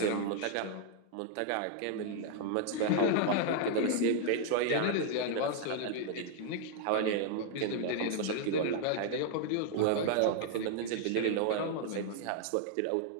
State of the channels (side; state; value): both; different; correlation 0.00